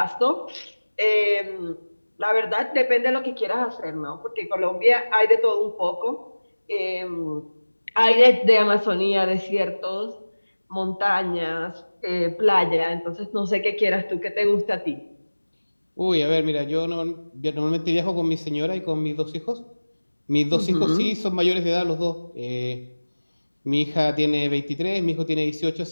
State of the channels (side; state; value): both; inverted; correlation -1.00